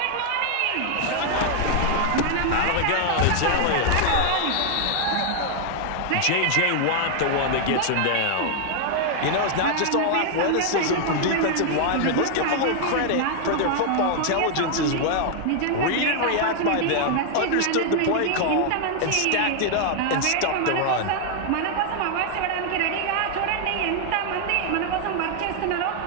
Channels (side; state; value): both; different; correlation 0.00